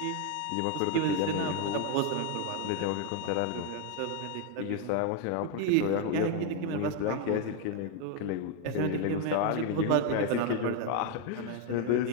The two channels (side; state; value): both; different; correlation 0.01